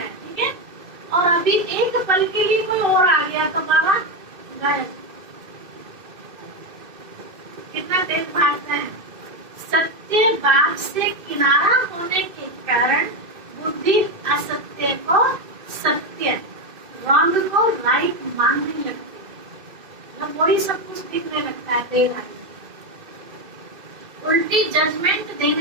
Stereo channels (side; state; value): left; late; 2.6 ms